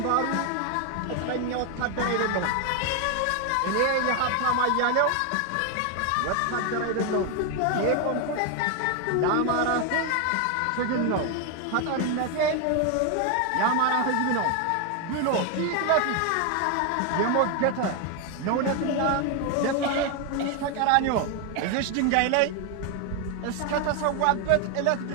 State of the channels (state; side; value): different; both; correlation 0.01